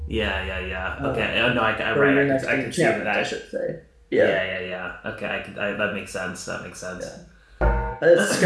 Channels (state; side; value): identical; both; correlation 1.00